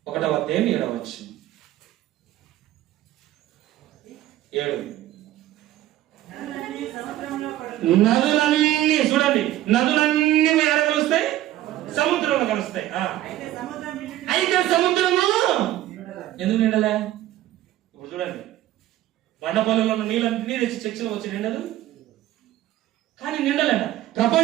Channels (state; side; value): quieter; left; 14.2 dB